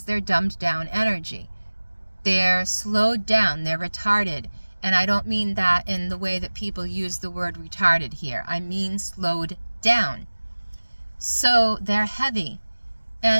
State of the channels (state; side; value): inverted; both; correlation -1.00